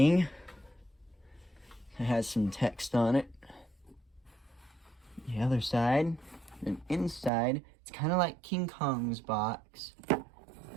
It has some text on it. The other side, and inside, it's kind of like King Kong's box.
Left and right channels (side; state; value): left; drops out; at 7.3 s